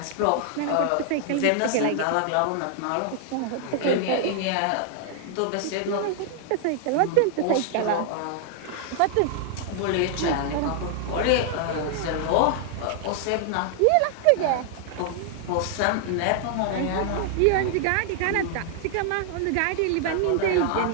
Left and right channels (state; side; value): different; both; correlation 0.00